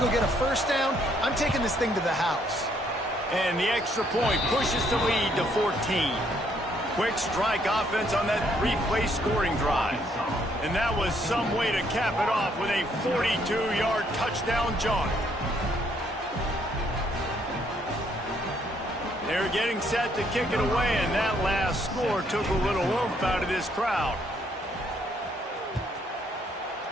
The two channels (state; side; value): normal; both; correlation 0.69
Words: to go get a first down. I'm taking this thing to the house. And the extra point pushes the lead to 14. Quick strike offense on that 3-play scoring drive. And that was some way to cap it off with a 42-yard touchdown jaunt. They're getting set to kick it away, and that last score took a little oomph out of this crowd.